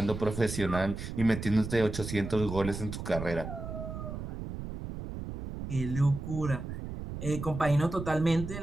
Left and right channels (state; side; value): noise; right; rumble, 7 dB below the sound